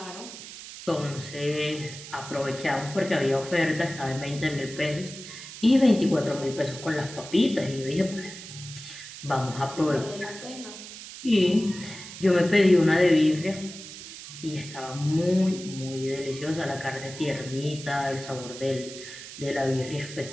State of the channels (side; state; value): right; noise; hiss, 13 dB below the sound